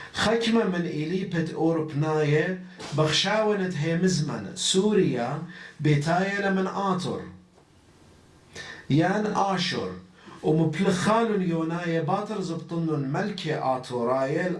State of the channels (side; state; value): both; identical; correlation 1.00